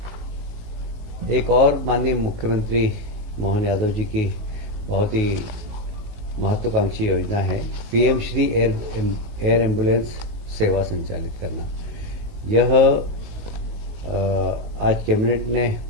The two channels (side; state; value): left; late; 19 ms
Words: एक और माननीय मुख्यमंत्री मोहन यादव जी की बहुत ही महत्वाकांक्षी योजना है पीएम श्री एयर एम्बुलेंस सेवा संचालित करना। यह आज कैबिनेट ने